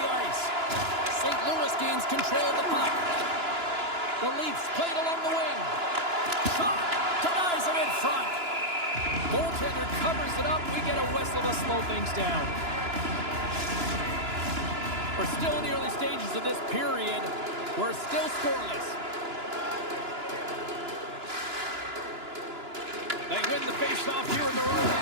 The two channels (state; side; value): late; left; 2.9 ms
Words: ice. St. Louis gains control of the puck. The Leafs play it along the wing. Shot! Denies him in front. Goaltender covers it up. We get a whistle to slow things down. We're still in the early stages of this period. We're still scoreless. They win the face-off here in their own